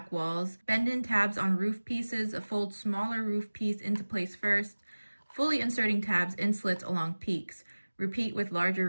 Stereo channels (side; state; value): both; inverted; correlation -1.00